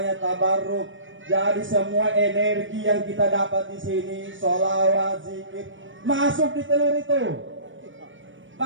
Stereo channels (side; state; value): left; late; 0.56 ms